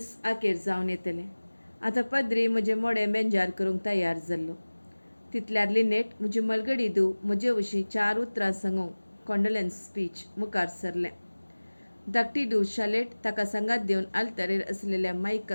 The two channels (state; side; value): inverted; both; correlation -1.00